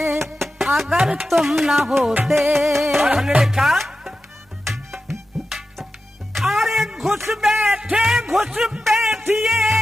अगर तुम ना होते। और हमने लिखा अरे घुस बैठिए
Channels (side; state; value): both; normal; correlation 0.92